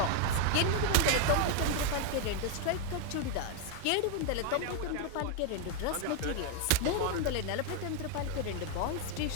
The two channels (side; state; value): both; different; correlation 0.01